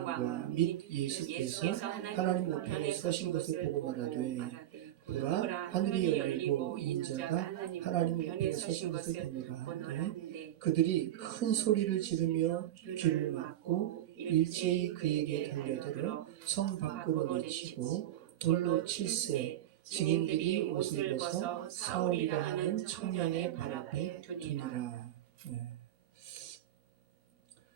및 예수께서 하나님 우편에 서신 것을 보고 말하되 보라 하늘이 열리고 인자가 하나님 우편에 서신 것을 보노라. 그들이 큰 소리를 지르며 귀를 막고 일제히 그에게 달려들어 성 밖으로 내치고 돌로 칠세 증인들이 옷을 벗어 사울이라 하는 청년의 발 앞에 두니라. 네.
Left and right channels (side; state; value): left; quieter; 12.6 dB